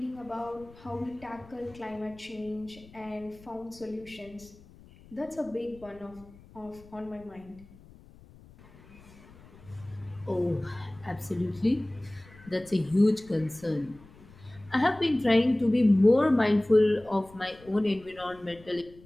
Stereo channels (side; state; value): left; noise; rumble, 23 dB below the sound